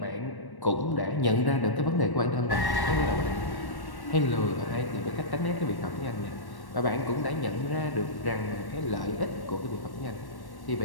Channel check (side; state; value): right; late; 1.1 ms